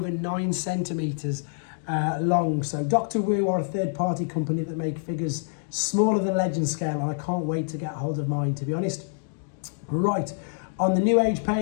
9 centimetres long. So Dr. Wu are a third party company that make figures smaller than Legend scale, and I can't wait to get hold of mine, to be honest. Right, on the New Age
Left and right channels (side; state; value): right; silent; digital silence